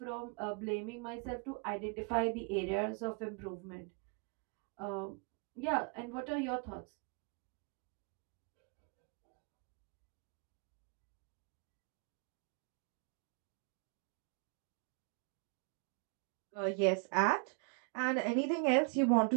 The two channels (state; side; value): quieter; left; 36.6 dB